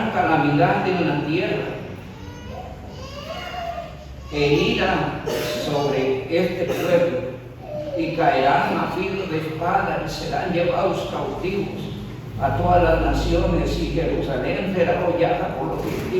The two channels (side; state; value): both; identical; correlation 1.00